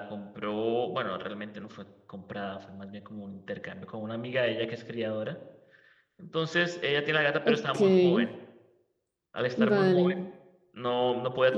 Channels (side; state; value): both; identical; correlation 1.00